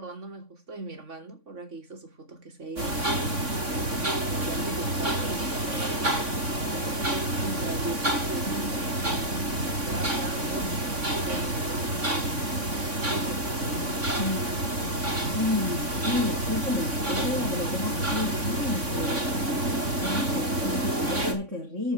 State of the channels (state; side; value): late; left; 3.5 ms